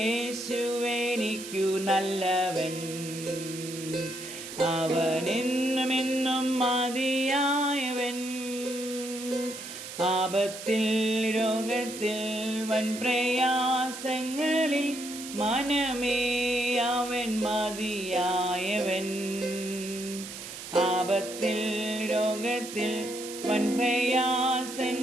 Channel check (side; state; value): right; noise; hiss, 10 dB below the sound